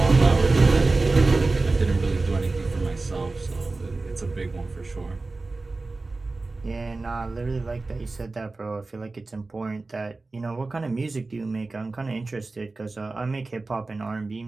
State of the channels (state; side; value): quieter; left; 3.5 dB